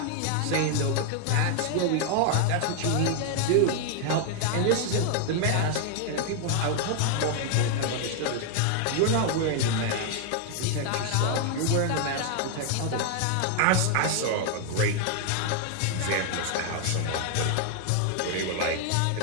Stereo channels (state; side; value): different; both; correlation 0.00